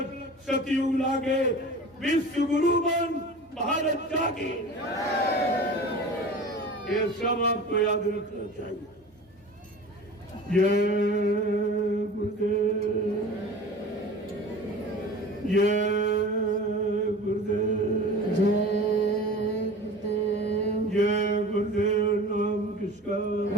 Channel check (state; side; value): normal; both; correlation 0.38